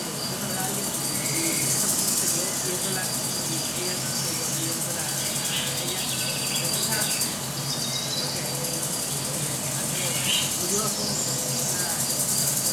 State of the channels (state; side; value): noise; right; hum, 25 dB below the sound